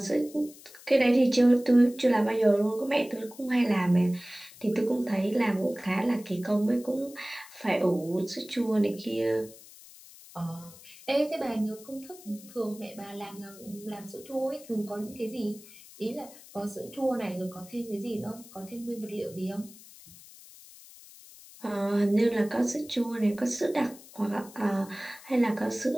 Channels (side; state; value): left; noise; hiss, 20 dB below the sound